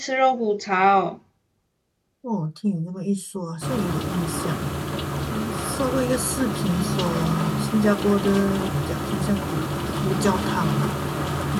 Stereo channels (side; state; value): both; identical; correlation 1.00